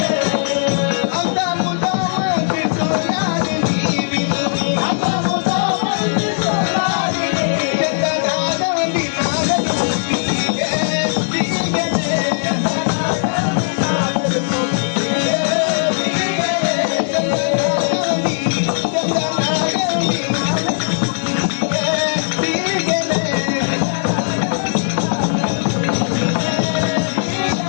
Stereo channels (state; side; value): silent; right; digital silence